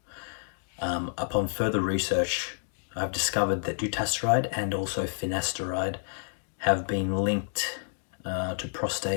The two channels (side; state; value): right; silent; digital silence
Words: Upon further research, I've discovered that dutasteride and also finasteride have been linked to